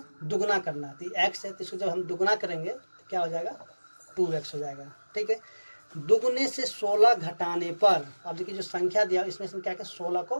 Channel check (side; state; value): both; inverted; correlation -1.00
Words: दुगना करना है। तो x है तो इसको जब हम दुगना करेंगे तो क्या हो जाएगा 2x हो जाएगा, ठीक है। दुगने से 16 घटाने पर, अब देखिए जो संख्या दिया इसमें से क्या क्या 16